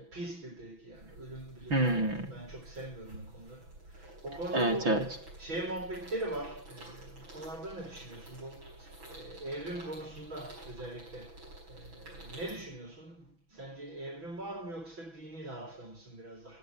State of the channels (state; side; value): late; left; 6.1 ms